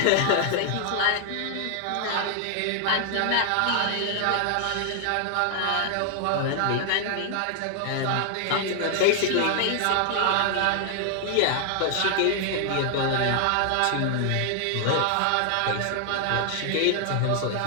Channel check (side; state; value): both; different; correlation 0.00